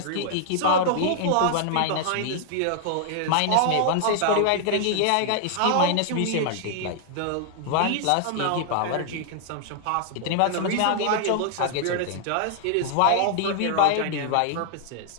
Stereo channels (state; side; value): different; both; correlation 0.00